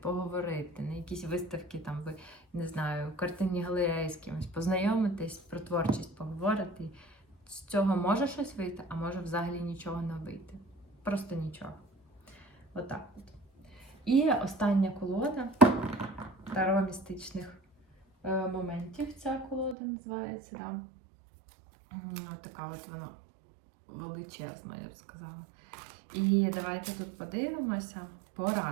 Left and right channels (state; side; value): drops out; left; at 19.8 s